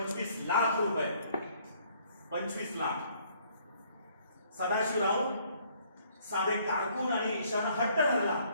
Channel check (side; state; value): both; inverted; correlation -0.63